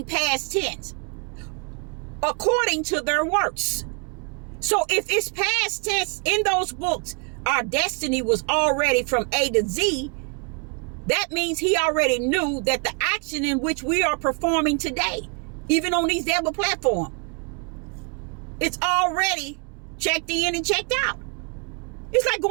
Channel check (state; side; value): quieter; left; 37.2 dB